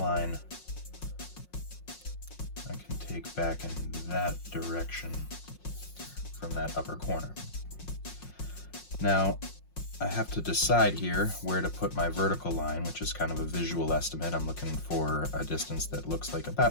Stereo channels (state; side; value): late; right; 5.6 ms